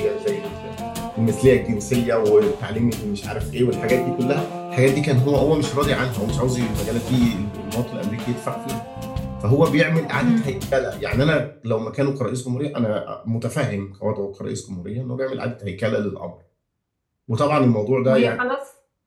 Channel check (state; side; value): identical; both; correlation 1.00